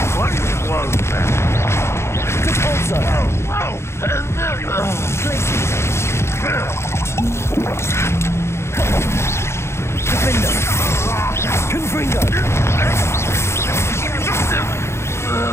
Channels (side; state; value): right; late; 0.13 ms